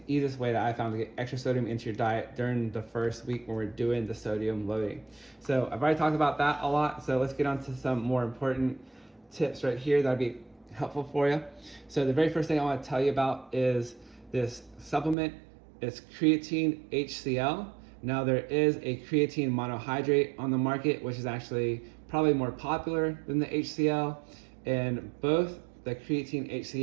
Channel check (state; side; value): drops out; left; at 15.2 s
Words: easiest way that I found to get extra sodium into your diet during the first week when we're doing the sodium loading. So I've already talked about that a lot. So let's get on to some more important tips right here that'll be helpful for you. So the very first thing I want to tell you about is this supplement. It's creatine HCl. Now there is a creatine monohydrate on the market, which is actually probably more popular than the HCl, and both the creatine